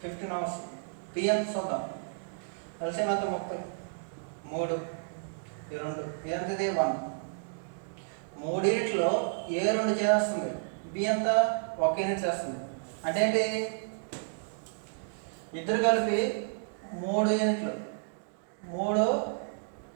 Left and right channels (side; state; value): left; silent; digital silence